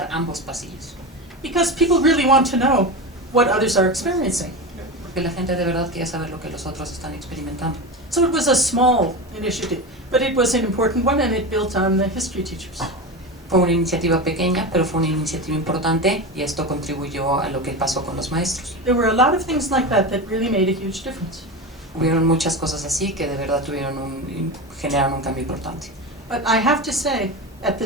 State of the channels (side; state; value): both; normal; correlation 0.23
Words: ambos pasillos. Because people really want to know what others are experiencing. Porque la gente de verdad quiere saber lo que los otros están experimentando. So it was a small initiative, but it was an important one, and it built on the history teachers. Fue una iniciativa pequeña, pero fue una iniciativa importante, y esto contribuyó a lo que pasó con los maestros. There were a lot of things like that that really made a huge difference. Hubieron muchas cosas así que de verdad generaron un cambio importante. But I have to say, at the